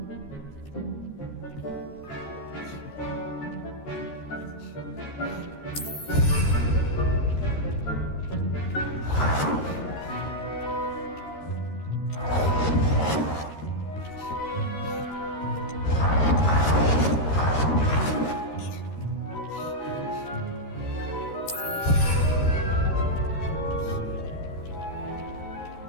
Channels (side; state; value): right; late; 13 ms